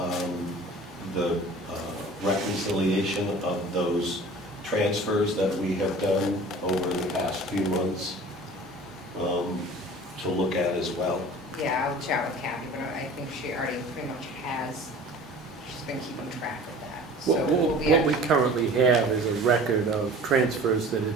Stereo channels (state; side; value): normal; both; correlation 0.43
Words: the reconciliation of those transfers that we have done over the past few months to look at as well. Yeah, I'll chat with Kathy, but I think she already pretty much has, she's been keeping track of that. So we'll be What we currently have is a record of transfers that